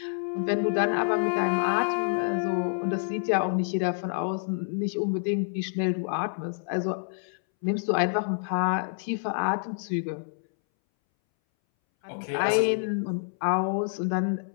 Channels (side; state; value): right; silent; 60 dB below the other